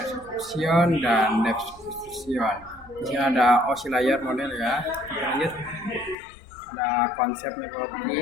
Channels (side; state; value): right; drops out; at 6.2 s